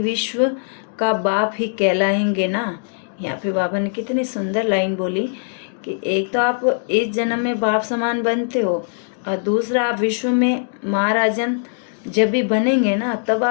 का बाप ही कहलाएंगे ना। यहाँ पे बाबा ने कितनी सुंदर लाइन बोली कि एक तो आप इस जन्म में बाप समान बनते हो और दूसरा आप विश्व में महाराजन जब भी बनेंगे ना तब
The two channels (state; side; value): silent; right; digital silence